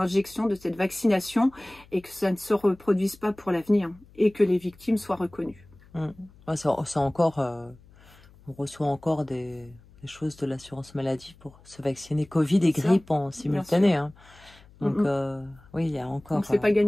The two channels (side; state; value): left; noise; hum, 25 dB below the sound